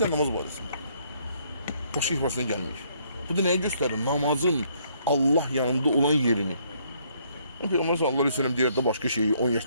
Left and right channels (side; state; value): both; inverted; correlation -0.68